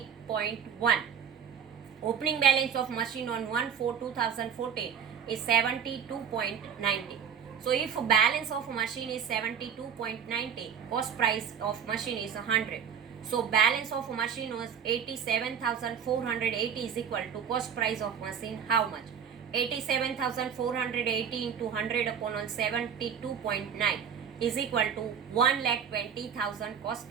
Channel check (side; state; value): left; quieter; 7.7 dB